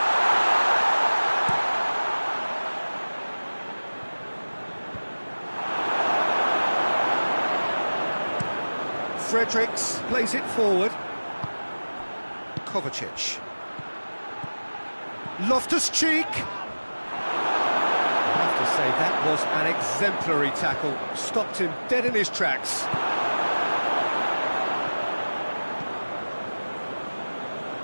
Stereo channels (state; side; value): inverted; both; correlation -1.00